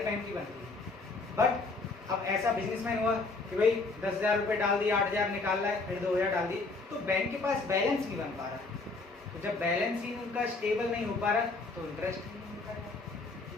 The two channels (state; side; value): quieter; right; 3.7 dB